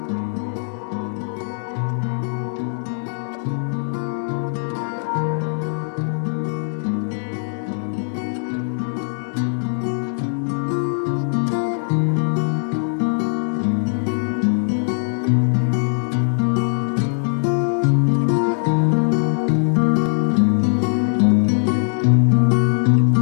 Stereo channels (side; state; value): right; silent; digital silence